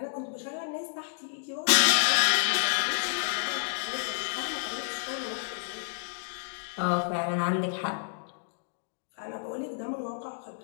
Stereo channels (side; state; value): right; silent; digital silence